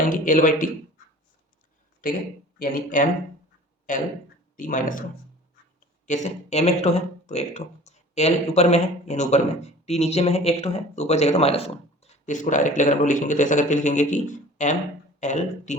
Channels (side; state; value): both; normal; correlation 0.45